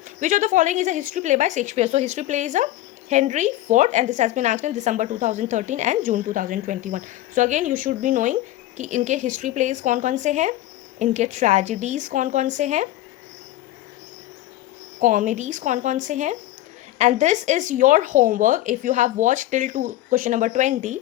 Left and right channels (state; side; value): quieter; right; 15.0 dB